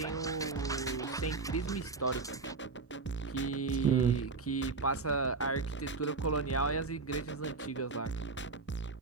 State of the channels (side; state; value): left; quieter; 4.2 dB